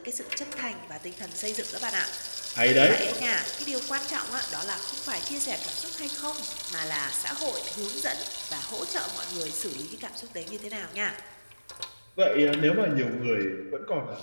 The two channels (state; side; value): inverted; both; correlation -1.00